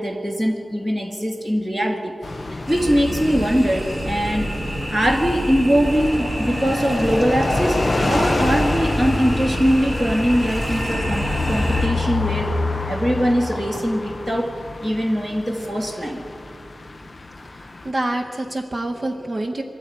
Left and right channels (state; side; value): normal; both; correlation 0.95